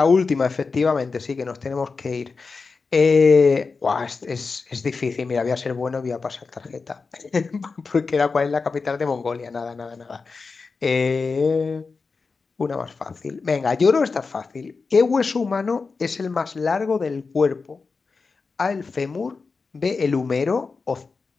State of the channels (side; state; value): right; quieter; 4.5 dB